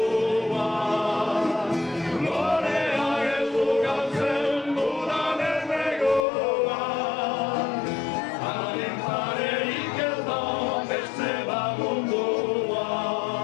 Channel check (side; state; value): right; drops out; at 6.2 s